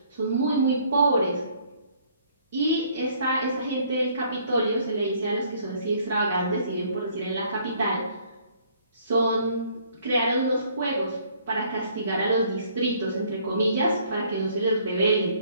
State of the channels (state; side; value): inverted; both; correlation -0.61